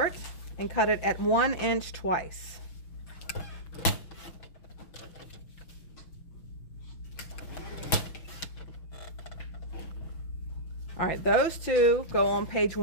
and cut it at 1 inch twice. All right, those 2 go on page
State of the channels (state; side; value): late; right; 5.9 ms